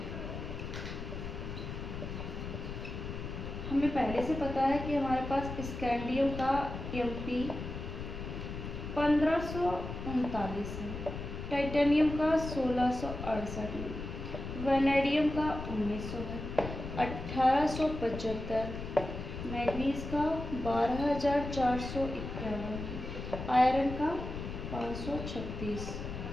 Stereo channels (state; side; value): noise; left; rumble, 7 dB below the sound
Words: हमें पहले से पता है कि हमारे पास स्कैंडियम का एमपी 1539 है, टाइटेनियम का 1668 है, वैनेडियम का 1900 है, 1875, मैग्नीज का 12451, आयरन का 536,